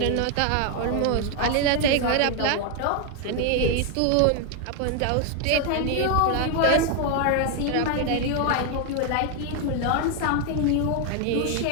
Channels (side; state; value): both; different; correlation 0.01